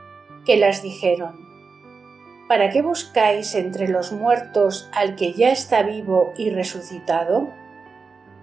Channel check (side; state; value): left; quieter; 4.8 dB